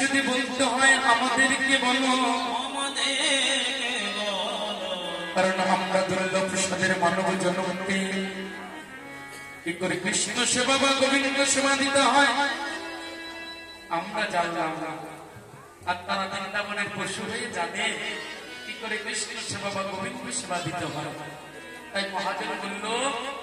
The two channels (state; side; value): identical; both; correlation 1.00